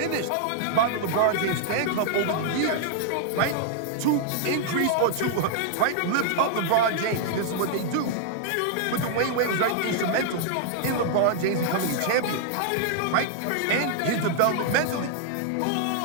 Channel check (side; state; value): both; different; correlation -0.01